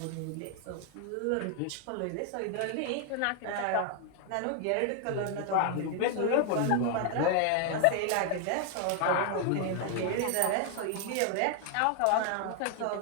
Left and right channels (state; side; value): different; both; correlation 0.00